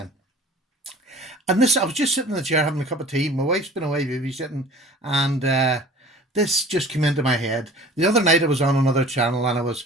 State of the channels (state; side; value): normal; both; correlation 0.45